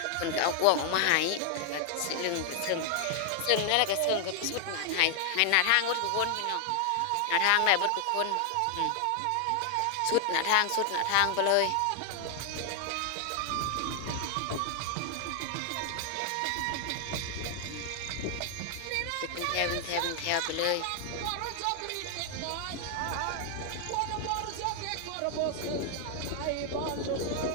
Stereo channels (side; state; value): both; different; correlation 0.00